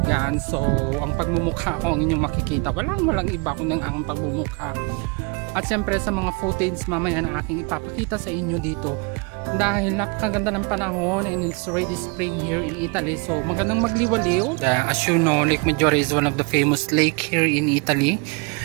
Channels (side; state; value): left; quieter; 31.2 dB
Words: So ang pagmumukha ko ang inyong makikita, walang iba kundi ang pagmumukha. At siyempre sa mga footage mamaya na aking ipapakita sa inyo dito, dahil napakaganda ng panahon and it's already spring here in Italy, so magandang magliwaliw. As you know, Lake Maggiore is one of the famous lake here in Italy.